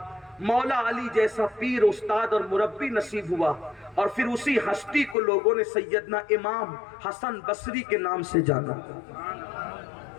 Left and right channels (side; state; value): right; drops out; at 5.2 s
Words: مولا علی جیسا پیر، استاد اور مربی نصیب ہوا، اور پھر اسی ہستی کو لوگوں نے سیدنا امام حسن بصری کے نام سے جانا۔